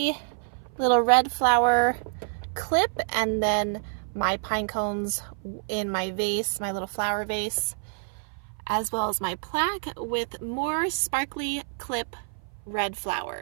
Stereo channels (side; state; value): left; silent; 56 dB below the other